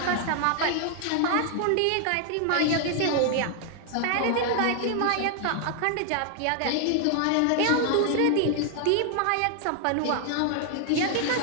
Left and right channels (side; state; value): both; different; correlation 0.00